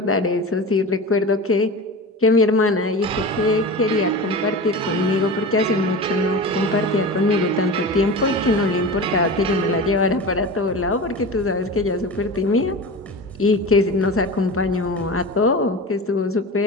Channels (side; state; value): both; normal; correlation 0.30